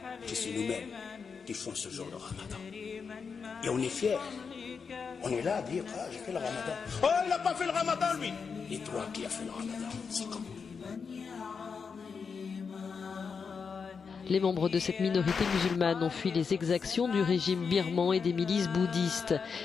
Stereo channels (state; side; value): quieter; right; 5.7 dB